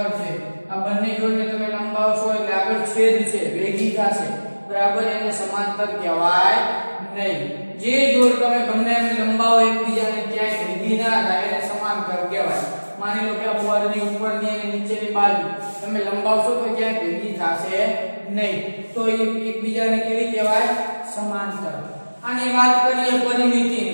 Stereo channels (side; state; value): both; inverted; correlation -1.00